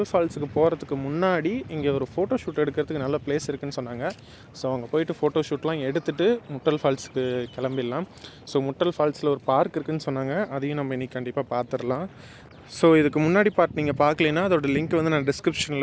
ஃபால்ஸுக்கு போகிறதுக்கு முன்னாடி இங்கே ஒரு ஃபோட்டோ ஷூட் எடுக்கிறதுக்கு நல்ல பிளேஸ் இருக்குதுன்னு சொன்னாங்க. ஸோ அங்கே போயிட்டு ஃபோட்டோ ஷூட்லாம் எடுத்துகிட்டு முட்டல் ஃபால்ஸுக்கு கிளம்பிடலாம். ஸோ முட்டல் ஃபால்ஸில் ஒரு பார்க் இருக்குதுன்னு சொன்னாங்க. அதையும் நம்ம இன்றைக்கி கண்டிப்பாக பார்த்துடலாம். ஸோ இதுக்கு முன்னாடி பார்ட் நீங்கள் பார்க்கலைன்னா அதோட லிங்க் வந்து நான்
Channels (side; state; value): both; identical; correlation 1.00